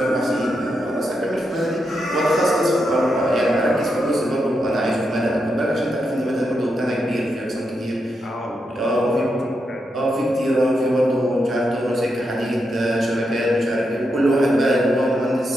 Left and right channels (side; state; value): both; normal; correlation 0.84